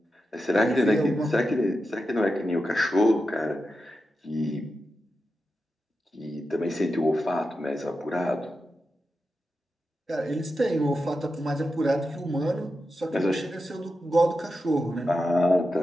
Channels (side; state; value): both; normal; correlation 0.90